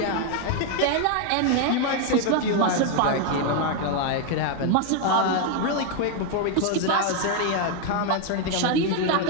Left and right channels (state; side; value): different; both; correlation 0.01